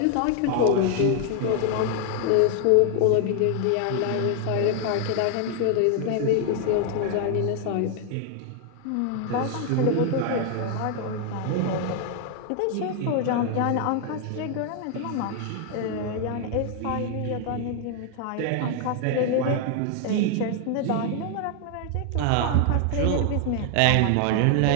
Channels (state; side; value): different; both; correlation 0.00